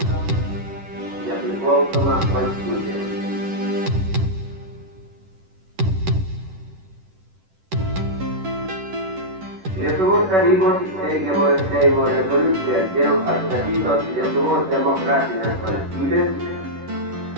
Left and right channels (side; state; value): left; late; 11 ms